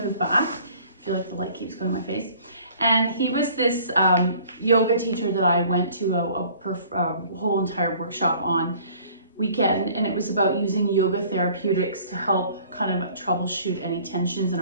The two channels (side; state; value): both; inverted; correlation -0.53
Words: move back. I feel like the light keeps going in my face. And he was this yoga teacher that I went to a whole entire workshop on weekend, and it was about using yoga therapeutics to help kind of troubleshoot any tensions in